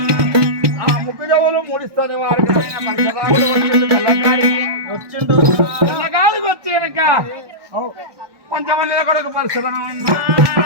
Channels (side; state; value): left; late; 1.2 ms